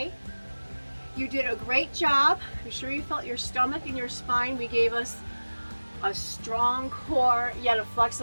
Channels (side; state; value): both; inverted; correlation -1.00